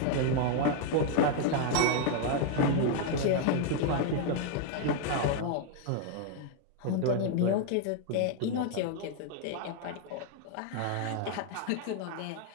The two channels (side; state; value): both; different; correlation 0.00